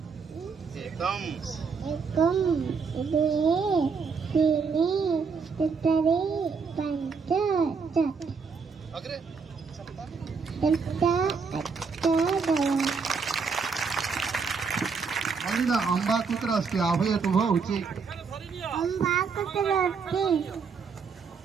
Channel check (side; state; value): left; quieter; 5.3 dB